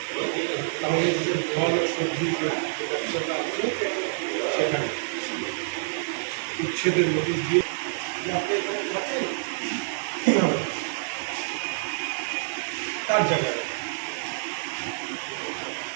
ফল সবজি ব্যবসাটা আছে সেখানে উচ্ছেদের নোটিশ দিয়ে তার জায়গায়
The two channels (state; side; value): silent; left; digital silence